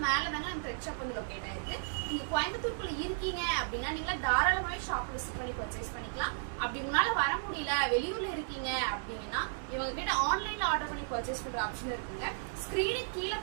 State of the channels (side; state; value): left; silent; digital silence